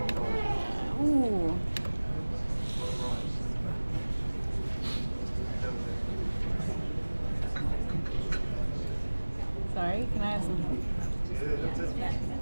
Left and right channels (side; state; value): both; inverted; correlation -1.00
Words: Ooh. Sorry, can I have some help?